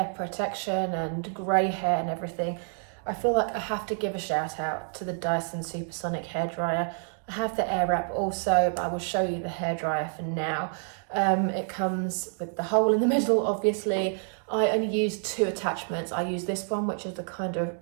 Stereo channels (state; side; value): silent; left; 59 dB below the other